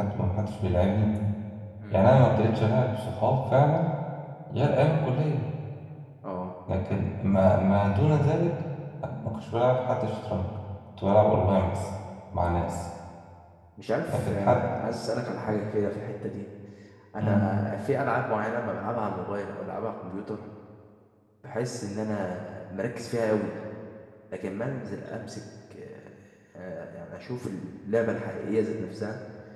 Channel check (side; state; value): both; identical; correlation 1.00